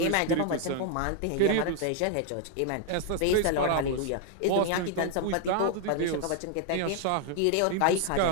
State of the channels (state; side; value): different; both; correlation 0.00